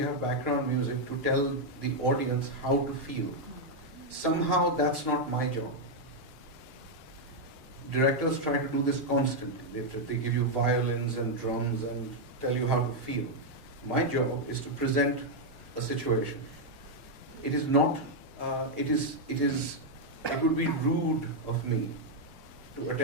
have background music to tell the audience how to feel. Somehow that's not my job. Directors try to do this constantly. They give you violins and drums and tell you how to feel. My job is to present a situation. It is not, it would be rude of me to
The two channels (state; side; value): normal; both; correlation -0.01